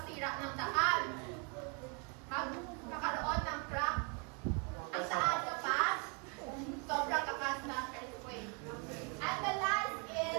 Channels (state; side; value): quieter; left; 35.1 dB